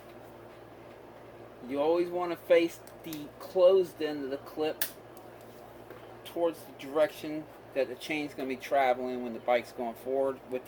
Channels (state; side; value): identical; both; correlation 1.00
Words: You always want to face the closed end of the clip towards the direction that the chain's going to be traveling when the bike's going forward, with